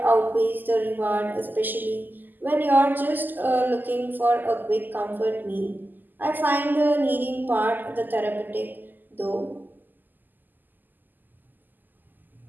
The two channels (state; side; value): late; left; 0.088 ms